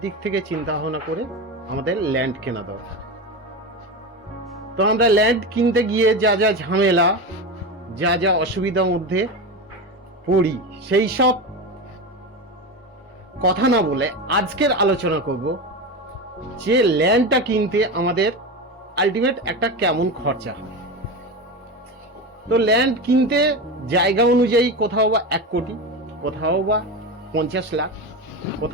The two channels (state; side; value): normal; both; correlation 0.21